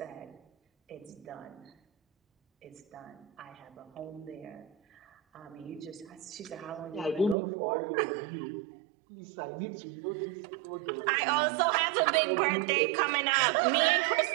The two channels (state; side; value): drops out; left; at 7.4 s